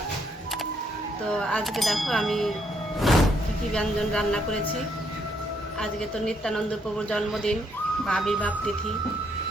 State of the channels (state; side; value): normal; both; correlation 0.73